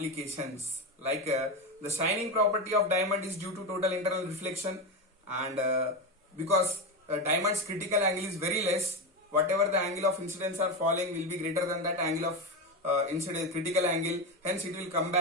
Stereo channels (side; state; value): both; normal; correlation 0.15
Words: like the shining property of diamond is due to total internal reflection, and because diamond's critical angle is very less, whatever the angle of incidence are falling will be greater than that angle of incidence critical angle, hence it will come